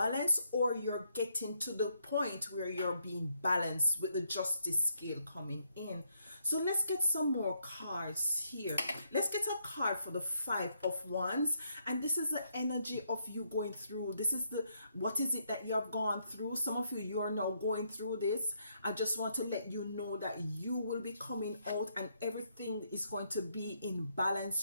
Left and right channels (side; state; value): both; inverted; correlation -0.75